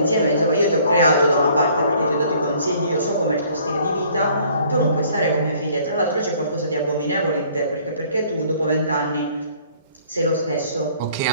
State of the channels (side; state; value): both; inverted; correlation -0.57